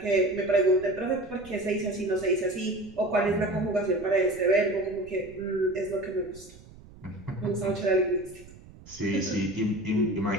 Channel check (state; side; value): noise; right; rumble, 20 dB below the sound